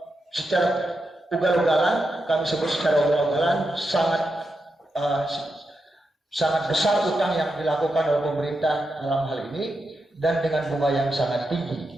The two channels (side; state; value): both; normal; correlation 0.87